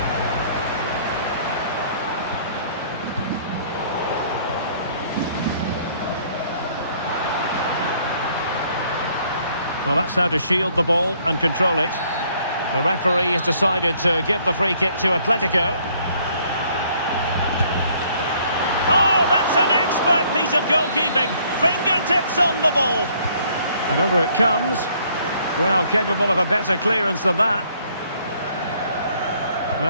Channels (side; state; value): both; inverted; correlation -0.63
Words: Well, that's how to shield the ball and control it. The referee has decided to give the free kick to Atletico. Oh, that's an expert piece of goalkeeping. Fingertips on the ball. And over it comes. Well, capable of a better clearance than that.